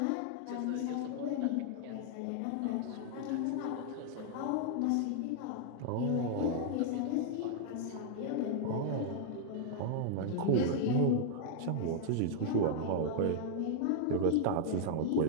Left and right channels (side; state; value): both; different; correlation -0.01